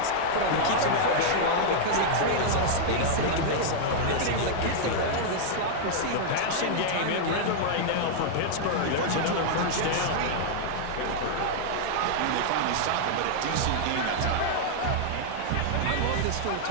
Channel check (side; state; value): both; different; correlation -0.01